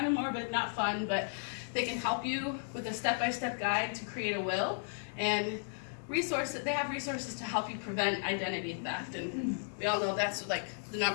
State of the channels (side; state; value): right; silent; digital silence